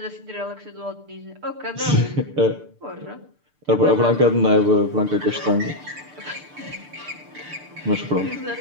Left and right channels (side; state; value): left; late; 6.8 ms